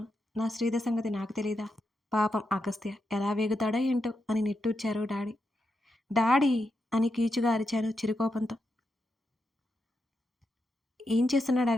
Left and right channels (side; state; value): both; normal; correlation 0.85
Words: నా శ్రీధర్ సంగతి నాకు తెలీదా? పాపం అగస్త్య ఎలా వేగుతాడో ఏంటో అని నిట్టూర్చారు డాడీ. డాడీ అని కీచుగా అరిచాను చిరుకోపంతో. ఏం చేస్తున్నాడు